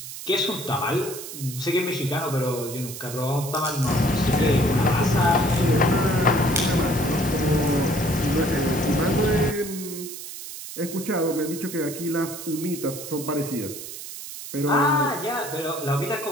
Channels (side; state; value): right; noise; hiss, 10 dB below the sound